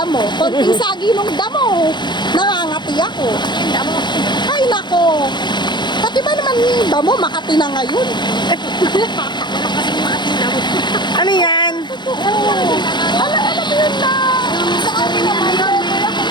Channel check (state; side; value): late; right; 0.22 ms